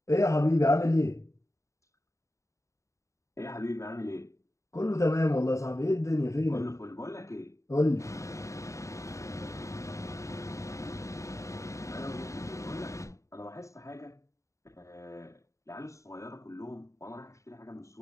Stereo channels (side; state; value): right; late; 0.15 ms